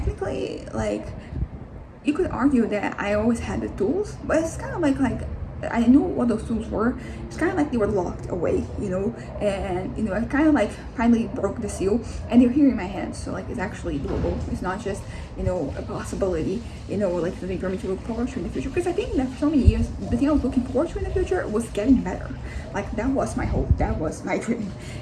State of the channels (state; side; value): identical; both; correlation 1.00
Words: like, you could argue that I always had the tools, but it's kind of like I knew what those tools were. It's kind of like they were locked away, and I kind of like finally broke the seal, and they're here in my hands. So like it's actually doable. It's not just a possibility, like something for me to look forward to in the future. Because I think that for so many years, the thing I was looking forward to in the future was getting better. Like that was my hope. That was my dream.